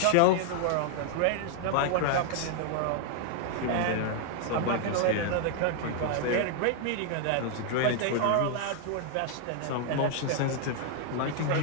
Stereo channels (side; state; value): both; different; correlation 0.00